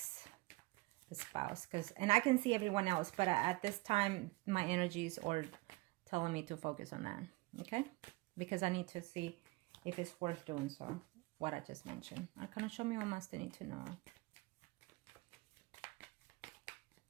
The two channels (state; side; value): quieter; left; 22.2 dB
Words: the spouse, and I can see everyone else, but at this time, my energies are telling me to focus on that, okay? Because I need to see if it's worth doing so, what I just mentioned. Arcana, show me what else they need to know.